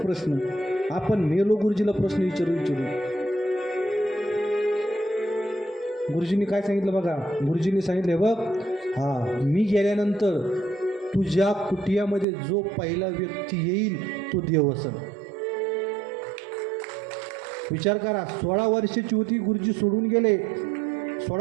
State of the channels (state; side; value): drops out; left; at 12.2 s